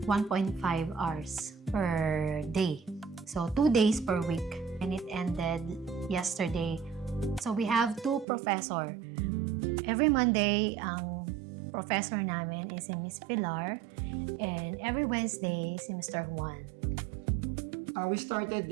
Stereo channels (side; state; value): left; drops out; at 8.2 s